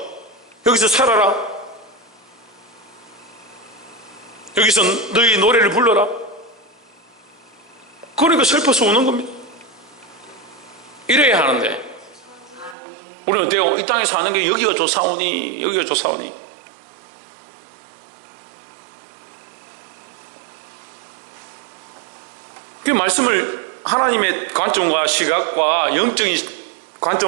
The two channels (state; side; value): drops out; left; at 12.8 s